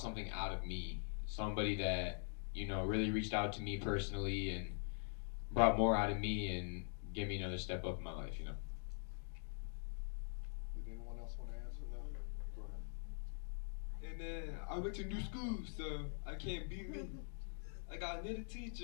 out of me. Somebody that, you know, really reached out to me personally and brought more out of me and gave me another step up in my life. You know. Did anyone else want to answer that? Go ahead. And then I went to new school, so I can't beat me. I got another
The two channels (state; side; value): silent; right; digital silence